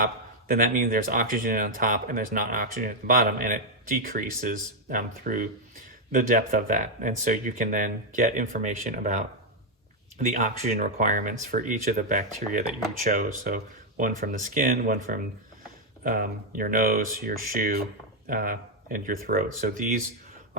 then that means there's oxygen on top and there's not oxygen at the bottom, and it decreases through the depth of that. And so you can then get information about the oxygen requirements for each of the bacteria that you chose. So one from the skin, one from your nose, your shoe, and your throat. So these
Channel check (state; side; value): normal; both; correlation 0.01